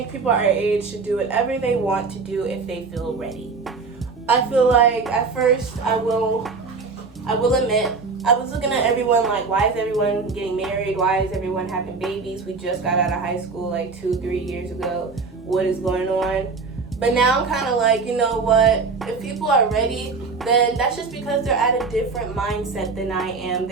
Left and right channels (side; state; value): left; quieter; 4.5 dB